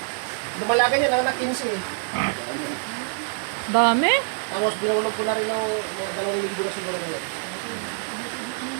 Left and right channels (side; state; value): left; silent; digital silence